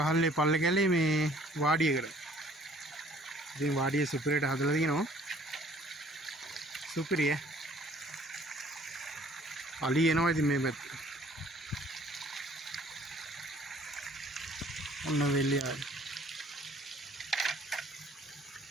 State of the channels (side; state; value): both; normal; correlation 0.57